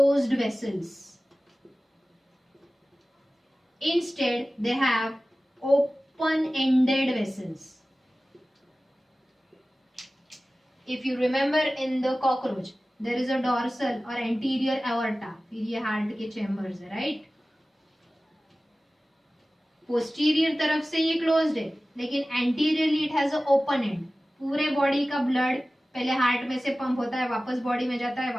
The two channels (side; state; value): both; normal; correlation 0.97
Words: vessels. Instead, they have open-ended vessels. If you remember in the cockroach, there is a dorsal or anterior aorta. फिर ये heart के chambers है, right? Posterior तरफ से ये क्लोज्ड है, लेकिन anteriorly it has a open and. पूरे बॉडी का ब्लड पहले हार्ट में से पंप होता है, वापस बॉडी में जाता है,